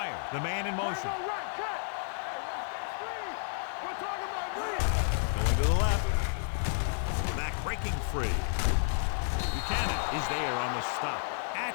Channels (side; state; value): right; silent; digital silence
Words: your eyes. the man in motion. Man, go right. Cut. Hey, watch that screen. We're talking about me. Going to the left. The back breaking free. Buchanan is there on the stop